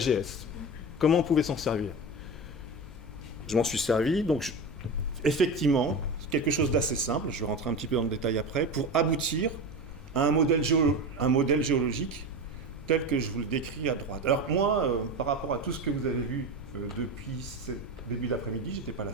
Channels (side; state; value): left; noise; hum, 17 dB below the sound